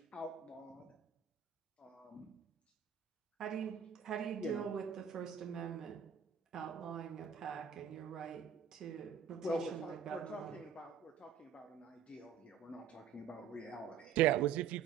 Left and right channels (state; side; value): quieter; left; 7.9 dB